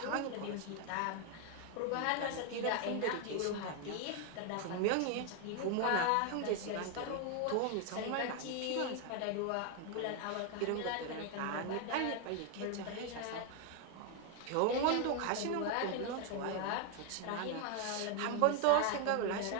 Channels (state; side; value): different; both; correlation 0.01